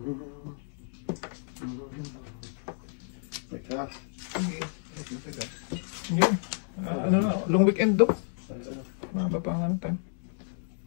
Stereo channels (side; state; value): right; silent; digital silence